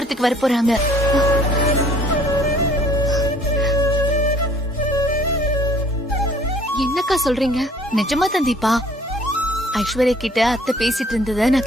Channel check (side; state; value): both; normal; correlation 0.55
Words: வர போறாங்க. என்னக்கா சொல்றீங்க? நிஜமா தான் தீபா. ஐஸ்வர்யா கிட்ட அத்தை பேசிட்டு இருந்தத